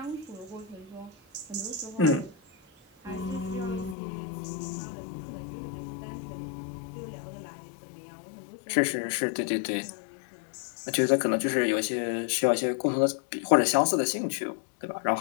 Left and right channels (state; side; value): drops out; right; at 4.0 s